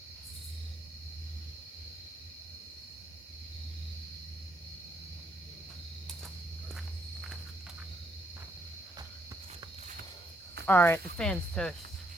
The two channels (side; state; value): both; normal; correlation 0.72